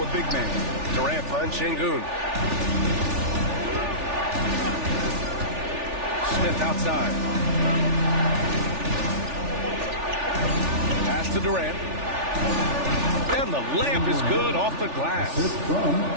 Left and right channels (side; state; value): left; late; 3.4 ms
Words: a big man. Durant finds Şengün. Smith outside. Pass to Durant. And the layup is good off the glass.